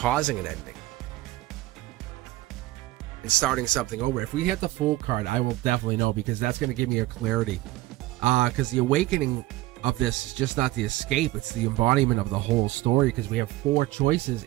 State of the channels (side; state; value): left; quieter; 17.8 dB